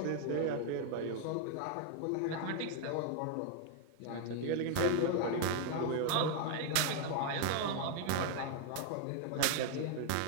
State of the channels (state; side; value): different; both; correlation 0.00